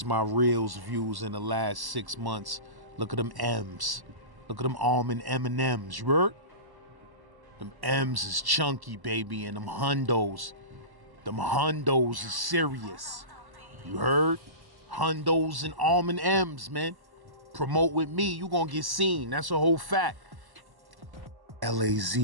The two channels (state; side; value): late; left; 1.1 ms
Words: my reels views in the last 6 months. Look at them M's. Look at them almond M&M's, you heard? Them M's is chunky, baby, and them hundos. Them hundos is serious. You heard? Hundos and almond M's, man. Promote with me, you gonna get seen. That's a whole fact. LAZ,